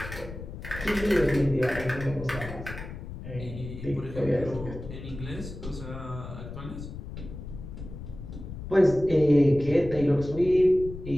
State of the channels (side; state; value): left; noise; rumble, 11 dB below the sound